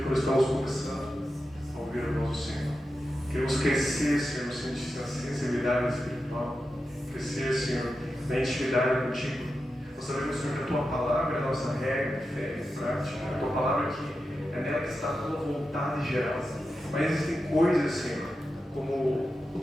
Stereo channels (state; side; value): normal; both; correlation 0.90